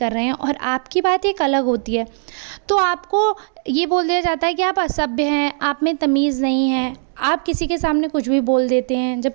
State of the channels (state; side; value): silent; left; digital silence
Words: रहे हैं और आपकी बात एक अलग होती है, तो आपको ये बोल दिया जाता है कि आप असभ्य हैं, आप में तमीज़ नहीं है, आप किसी के सामने कुछ भी बोल देते हैं,